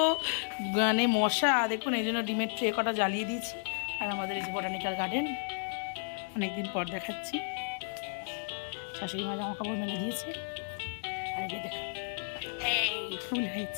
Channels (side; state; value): right; silent; digital silence